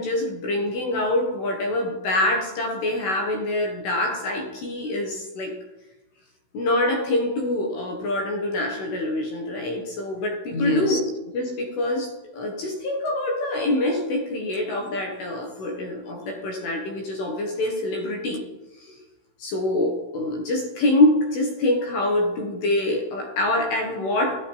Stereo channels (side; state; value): right; late; 16 ms